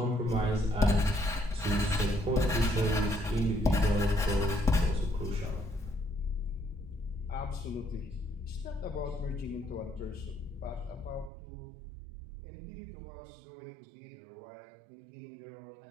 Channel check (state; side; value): drops out; left; at 11.3 s